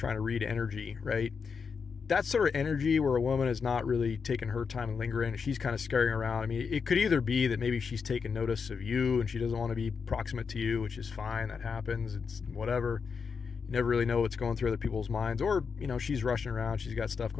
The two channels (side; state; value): right; quieter; 5.7 dB